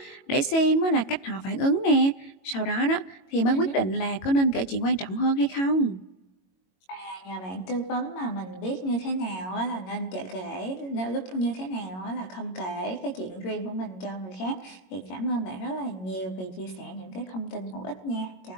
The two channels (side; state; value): right; late; 22 ms